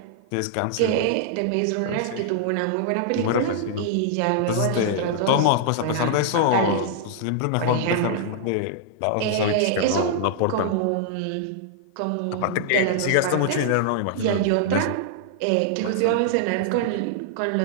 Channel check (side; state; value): both; different; correlation -0.01